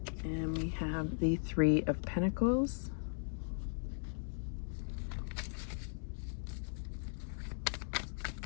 And we have the Three of Pentacles.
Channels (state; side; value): silent; right; digital silence